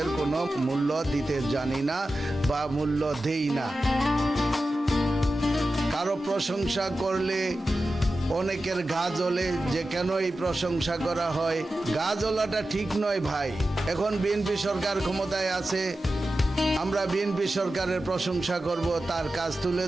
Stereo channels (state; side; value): normal; both; correlation 0.93